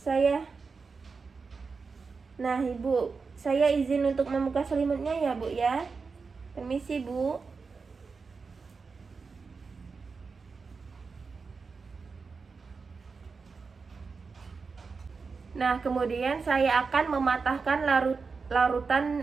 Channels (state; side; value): quieter; left; 4.8 dB